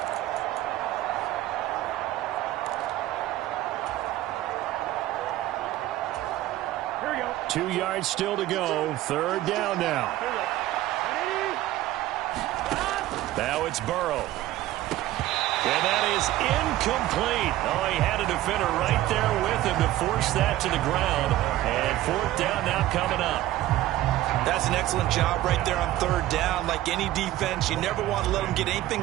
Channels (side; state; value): left; quieter; 15.1 dB